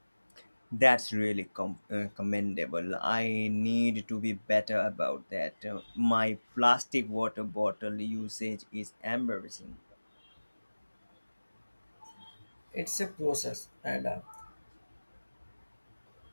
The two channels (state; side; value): inverted; both; correlation -1.00